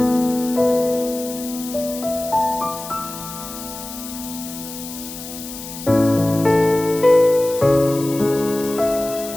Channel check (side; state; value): left; noise; hiss, 11 dB below the sound